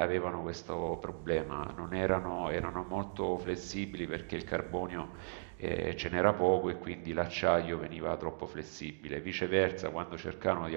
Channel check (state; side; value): silent; left; digital silence